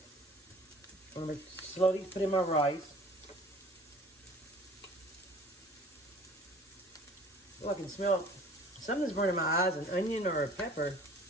I'm going to slowly put in my rice. Oh, I can smell something's burning my eyes, an onion or a pepper.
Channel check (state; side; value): normal; both; correlation 0.49